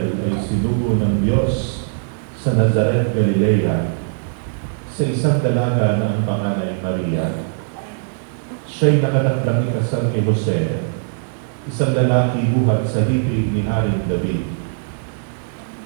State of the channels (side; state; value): left; silent; 66 dB below the other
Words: ay sinugo ng Diyos sa Nazaret, Galilea, sa isang dalaga na ang pangalan ay Maria. Siya'y nakatakdang ikasal kay Jose, isang lalaki buhat sa lipi ni Haring David.